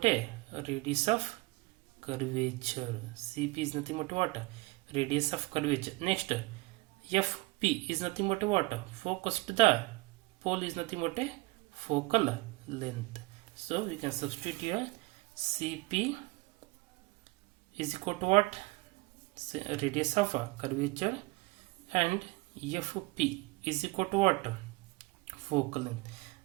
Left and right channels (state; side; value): quieter; left; 23.0 dB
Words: a radius of curvature. Cp is nothing but what? Radius of curvature. Next, Fp is nothing but what? Focus to the pole is nothing but a focal length. So we can substitute here. Cp is equal to what? Radius of curvature, and Fp is equal to what? Focal length.